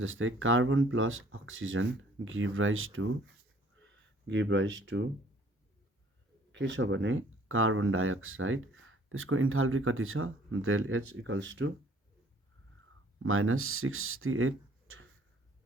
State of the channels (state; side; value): normal; both; correlation 0.58